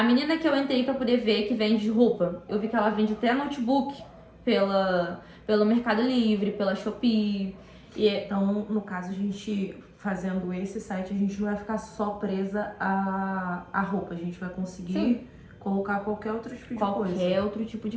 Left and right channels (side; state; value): both; identical; correlation 1.00